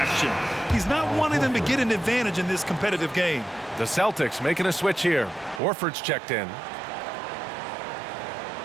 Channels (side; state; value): left; drops out; at 5.6 s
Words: He's not wanting them to get an advantage in this competitive game. The Celtics making a switch here. Horford's checked in.